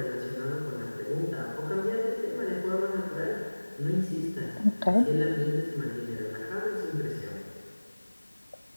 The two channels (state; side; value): inverted; both; correlation -1.00